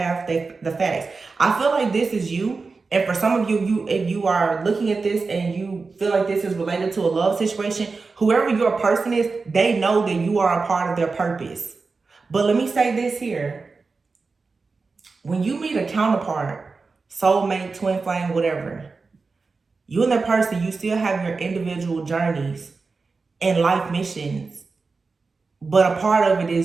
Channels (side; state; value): left; quieter; 4.3 dB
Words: the facts. I feel like this is you. And for some of you, if you are looking at this and you feel like this is related to a love situation, whoever your person is, they know that you are a part of their purpose. But let me say this here. When you meet a counterpart, soulmate, twin flame, whatever, you and that person, you still have your individual journeys and life missions. But a part of it